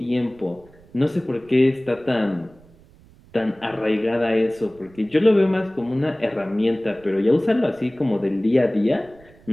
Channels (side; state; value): right; noise; rumble, 26 dB below the sound